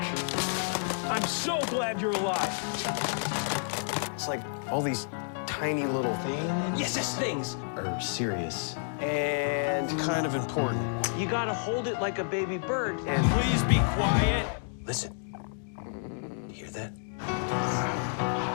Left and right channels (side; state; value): right; silent; digital silence